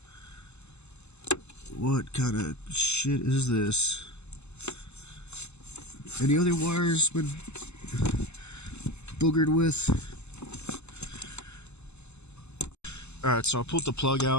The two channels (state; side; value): late; right; 0.81 ms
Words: What kind of shit is this? Any other wires been boogered with? Alright, so I pulled the plug